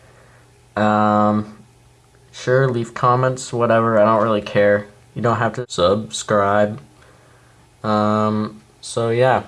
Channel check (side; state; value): both; identical; correlation 1.00